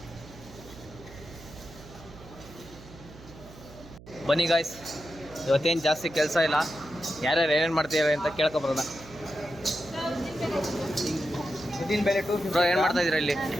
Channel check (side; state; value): right; noise; hum, 18 dB below the sound